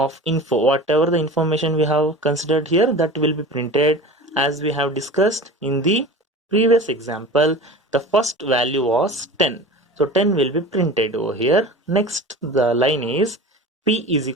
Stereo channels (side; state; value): both; normal; correlation 0.35